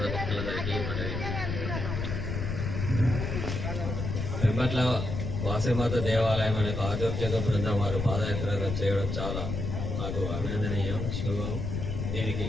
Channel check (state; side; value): noise; left; rumble, 3 dB below the sound